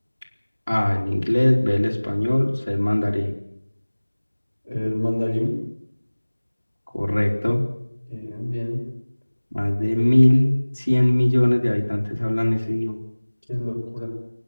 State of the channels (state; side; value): inverted; both; correlation -1.00